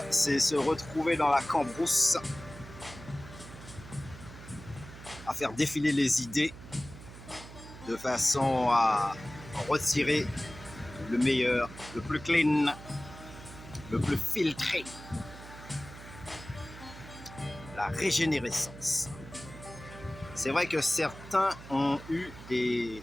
c'est se retrouver dans la cambrousse, à faire défiler les idées, de façon à retirer le meilleur, le plus clean, le plus filtré. La régénérescence. C'est vrai que certains ont eu des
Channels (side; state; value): right; noise; hum, 15 dB below the sound